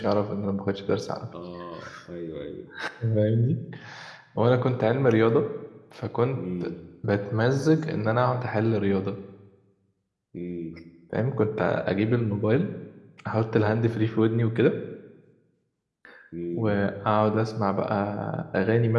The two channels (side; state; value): both; identical; correlation 1.00